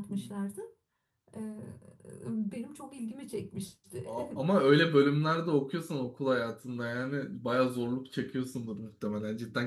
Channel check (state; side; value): identical; both; correlation 1.00